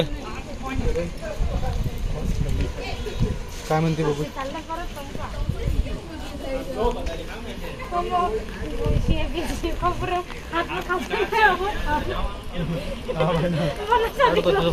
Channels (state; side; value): identical; both; correlation 1.00